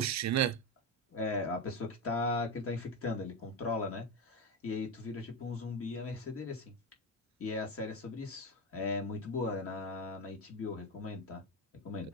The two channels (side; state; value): both; normal; correlation 0.15